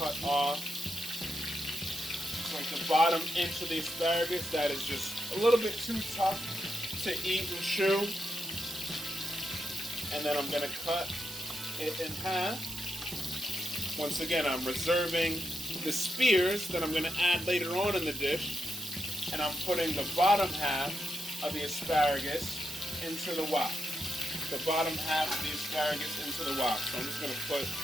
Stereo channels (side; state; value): right; noise; hiss, 11 dB below the sound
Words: off like the bottom inch of the asparagus that is just a little bit too tough to eat and chew. And then I'm gonna cut it in half. Once again, I'm reserving the spears that I'm going to add later on in the dish, and I'm putting the bottom half of the asparagus into the wok. The bottom half of the asparagus into the wok. So I'm just going to put